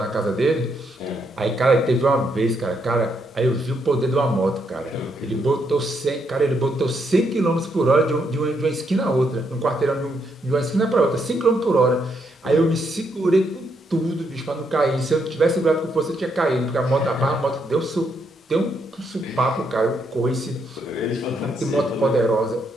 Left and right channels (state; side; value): normal; both; correlation 0.76